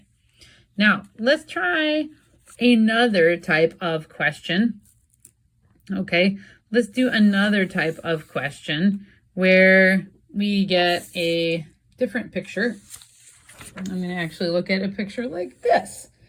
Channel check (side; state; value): both; identical; correlation 1.00